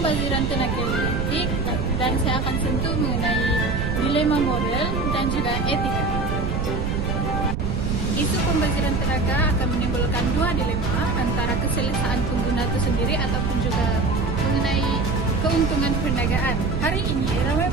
tenaga listrik dan saya akan sentuh mengenai dilema moral dan juga etika. Isu pembaziran tenaga akan menimbulkan dua dilema antara keselesaan pengguna itu sendiri ataupun juga mengenai keuntungan perniagaan. Hari ini, ramai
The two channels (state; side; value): noise; right; rumble, 2 dB below the sound